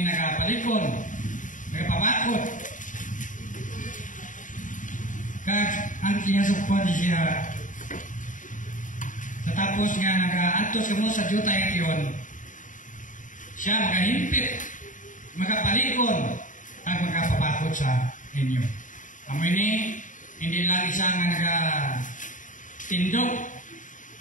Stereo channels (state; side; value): late; right; 0.37 ms